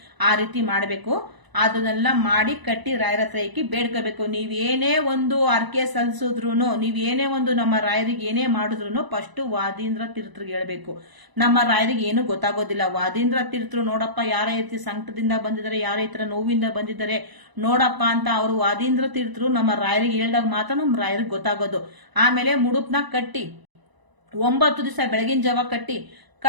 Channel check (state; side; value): late; left; 1.0 ms